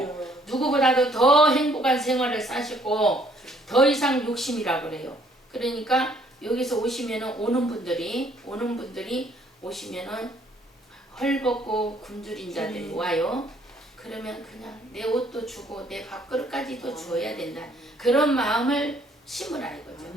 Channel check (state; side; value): normal; both; correlation 0.63